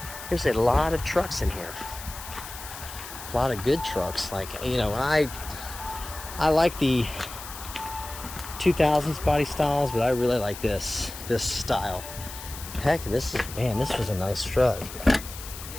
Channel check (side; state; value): left; noise; hiss, 12 dB below the sound